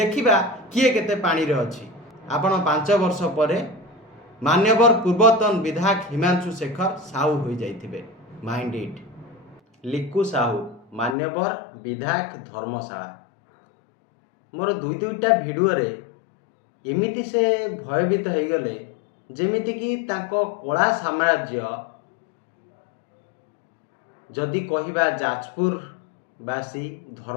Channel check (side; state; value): right; drops out; at 11.2 s